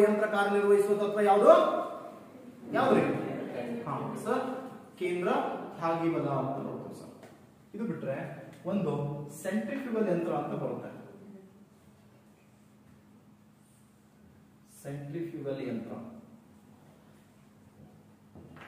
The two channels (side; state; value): both; identical; correlation 1.00